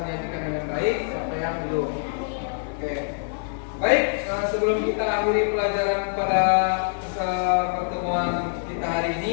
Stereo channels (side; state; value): right; silent; 62 dB below the other